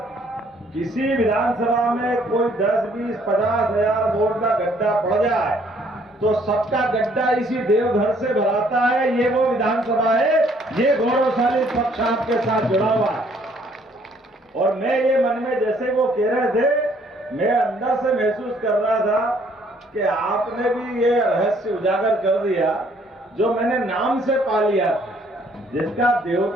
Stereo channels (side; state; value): both; normal; correlation 0.63